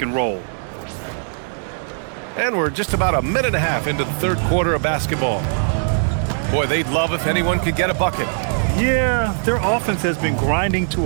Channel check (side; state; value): left; silent; 66 dB below the other